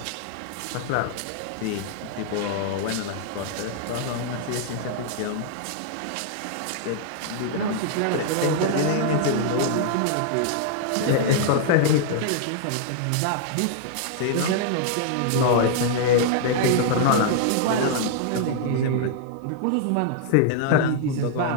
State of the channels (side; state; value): both; different; correlation -0.01